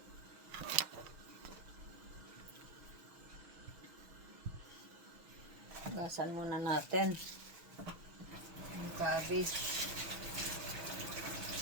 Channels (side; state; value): left; late; 6.4 ms